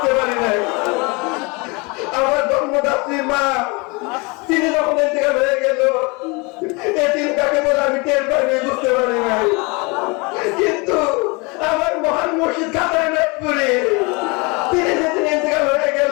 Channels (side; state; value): right; quieter; 28.3 dB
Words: পারি নাই। আমার জন্মদাত্রী মা তিনি যখন ইন্তেকাল হয়ে গেল, এদিন তাকে বলে আমি টের পাইনি, বুঝতে পারি নাই। কিন্তু আমার মহান মুর্শিদ খাজা এনায়তপুরি তিনি যেদিন ইন্তেকাল হয়ে গেলেন,